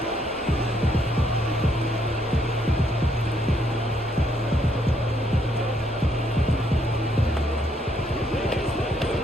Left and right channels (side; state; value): both; normal; correlation 0.72